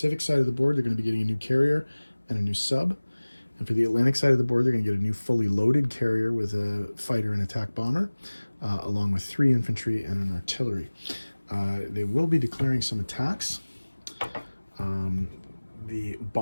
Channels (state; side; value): inverted; both; correlation -1.00